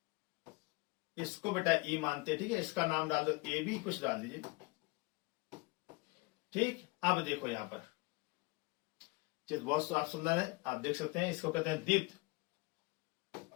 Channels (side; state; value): right; quieter; 25.8 dB